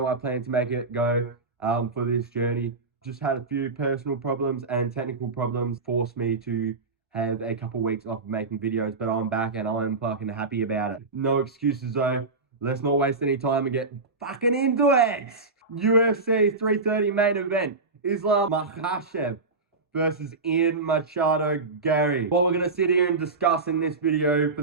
I plan to make it go for this journey. Just had a few personal problems and technical problems forced me to have a couple weeks off of making videos, but I'm back and I'm fucking happy about it. No excuses though. Let's not waste any time and get fucking into it. UFC 330 main event. Islam Makhachev versus Ian Garry. What we're going to sit here and discuss in this video for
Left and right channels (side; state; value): left; quieter; 3.8 dB